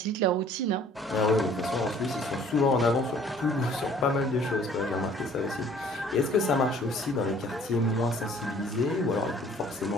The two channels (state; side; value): normal; both; correlation 0.54